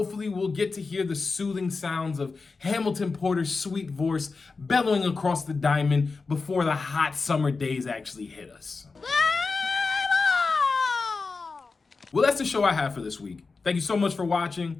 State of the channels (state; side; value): quieter; right; 4.3 dB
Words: we'll get to hear the soothing sounds of Hamilton Porter's sweet voice bellowing across the diamond before the hot summer days actually hit us. Well, that's the show I have for this week. Thank you so much for watching.